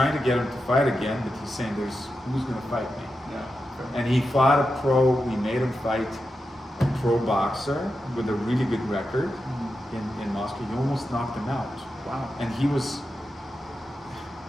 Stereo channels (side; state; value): both; normal; correlation 0.89